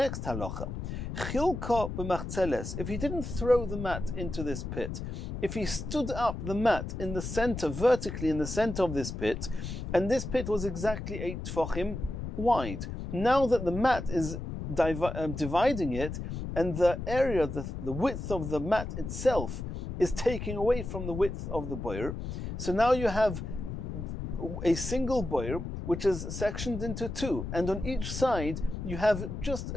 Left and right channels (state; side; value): noise; left; rumble, 6 dB below the sound